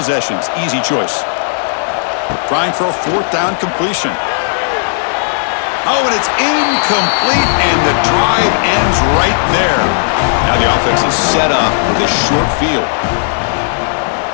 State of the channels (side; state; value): right; silent; digital silence